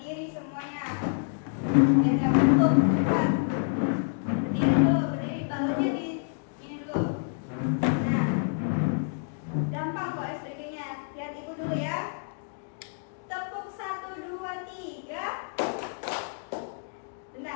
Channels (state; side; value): silent; right; digital silence